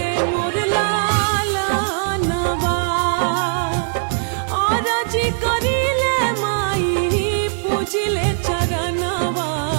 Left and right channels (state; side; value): silent; left; 66 dB below the other